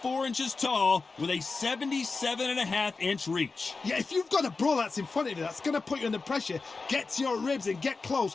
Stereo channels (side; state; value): right; quieter; 4.1 dB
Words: tall with a 77.5-inch reach. Yeah, if you've got a brawl that's in front of you, that's going to put you under pressure. Get to your ribs and get